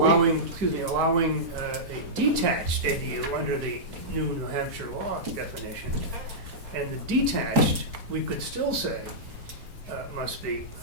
allowing a detached ADU under the new New Hampshire law definition. And the detached, we could still say, must be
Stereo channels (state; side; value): late; left; 4.2 ms